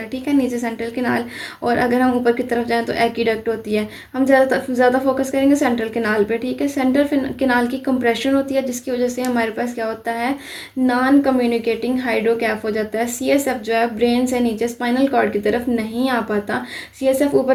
ठीक है, नीचे सेंट्रल किनाल, और अगर हम ऊपर की तरफ जाएं तो एक्वीडक्ट होती है। हम ज़्यादा फोकस करेंगे सेंट्रल किनाल पे। ठीक है, सेंट्रल किनाल की कंप्रेशन होती है, जिसकी वजह से हमारे पास क्या होता है, नॉन कम्युनिकेटिंग हाइड्रोकैफ हो जाता है। सीएसएफ जो है ब्रेन से नीचे स्पाइनल कॉर्ड की तरफ नहीं आ पाता, सीएसएफ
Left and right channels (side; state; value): both; identical; correlation 1.00